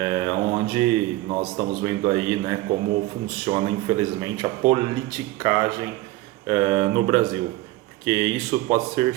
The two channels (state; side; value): quieter; left; 17.4 dB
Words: onde nós estamos vendo aí, né, como funciona, infelizmente, a politicagem no Brasil, porque isso pode ser